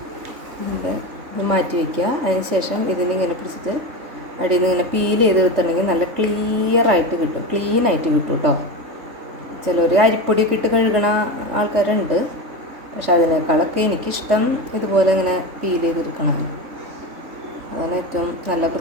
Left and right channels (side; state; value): left; late; 3.6 ms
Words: മാറ്റി വയ്ക്കുക. അതിന് ശേഷം ഇതിനിങ്ങനെ പിടിച്ചിട്ട് അടിയിൽ നിന്ന് ഇങ്ങനെ പീൽ ചെയ്ത് എടുത്തിട്ടുണ്ടെങ്കിൽ നല്ല ക്ലിയറായിട്ട് കിട്ടും, ക്ലീനായിട്ട് കിട്ടും കേട്ടോ. ചിലർ അരിപ്പൊടിയൊക്കെ ഇട്ട് കഴുകണ ആൾക്കാരുണ്ട്, പക്ഷെ അതിനേക്കാളൊക്കെ എനിക്കിഷ്ടം ഇതുപോലെ ഇങ്ങനെ പീൽ ചെയ്തെടുക്കണം. അതിന് ഏറ്റവും നല്ല